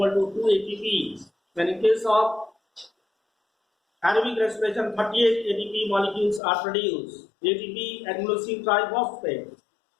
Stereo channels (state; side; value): drops out; right; at 6.4 s